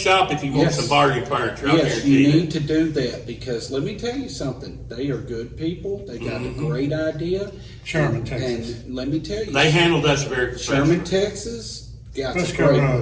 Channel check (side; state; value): both; identical; correlation 1.00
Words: if you want Yes. some bargain furniture. I Yes, guarantee you you. need to do that because let me tell you something. They are good people. They got a great idea. Sherman, and, Texas. And let me tell you, They handled us very professionally. Sherman, Texas, got a Frisco great